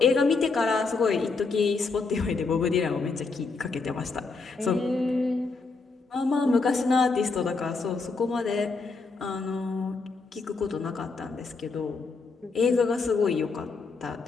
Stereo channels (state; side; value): quieter; right; 4.2 dB